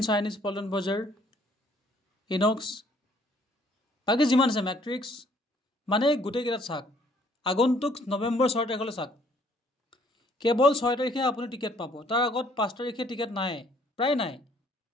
চাইনিজ পল্টন বজাৰ, ইনক্স, বাকী যিমান আছে মেট্ৰিক্স, মানে গোটেইকেইটাত চাওক। আগন্তুক নৱেম্বৰ 6 তাৰিখলৈ চাওক, কেৱল 6 তাৰিখে আপুনি টিকেট পাব। তাৰ আগত 5 তাৰিখে টিকেট নাই, প্ৰায় নাই,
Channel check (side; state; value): both; normal; correlation 0.62